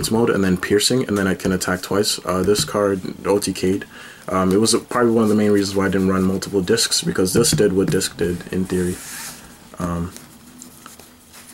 mode and then piercing, and then I can attack twice. This card OTK'd. It was probably one of the main reasons why I didn't run multiple discs, because this did what disc did in theory.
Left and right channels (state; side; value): identical; both; correlation 1.00